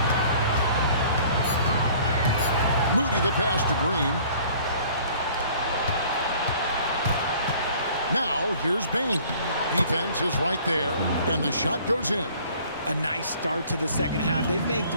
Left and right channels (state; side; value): inverted; both; correlation -0.53